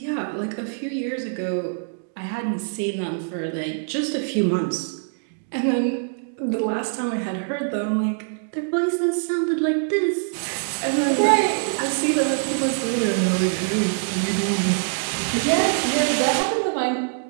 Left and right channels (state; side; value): silent; left; digital silence